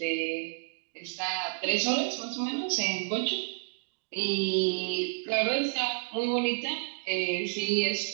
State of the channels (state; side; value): silent; left; digital silence